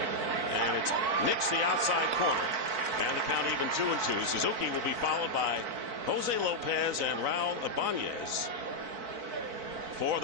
and it's nicks the outside corner, and the count even 2-2. Suzuki will be followed by Jose Lopez and Raul Ibanez for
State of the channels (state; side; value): late; left; 3.9 ms